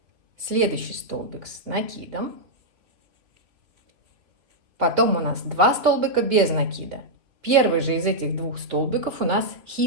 Следующий столбик с накидом. Потом у нас 2 столбика без накида. Первый же из этих 2 столбиков у нас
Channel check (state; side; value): late; left; 3.1 ms